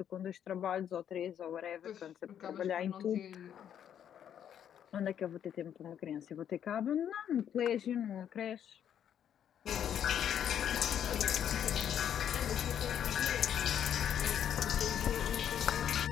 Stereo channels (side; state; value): right; quieter; 9.4 dB